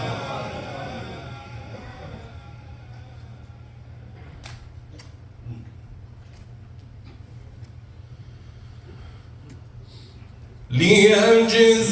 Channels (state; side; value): identical; both; correlation 1.00